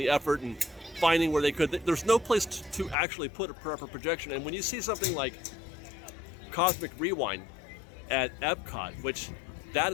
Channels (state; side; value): drops out; right; at 3.0 s